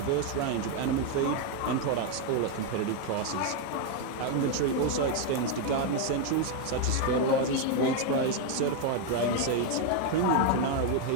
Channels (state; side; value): different; both; correlation 0.01